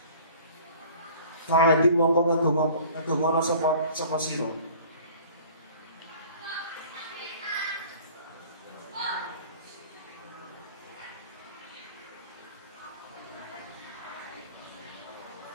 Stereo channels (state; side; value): inverted; both; correlation -0.48